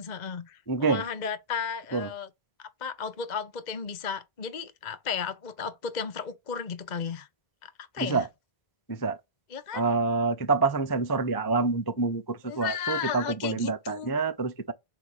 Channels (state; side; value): late; right; 2.0 ms